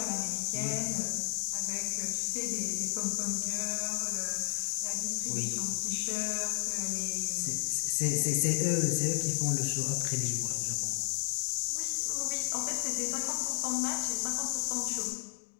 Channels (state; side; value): silent; right; 56 dB below the other